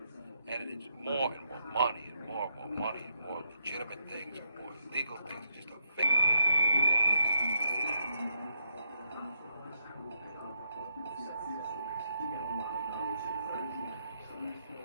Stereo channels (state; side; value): inverted; both; correlation -0.79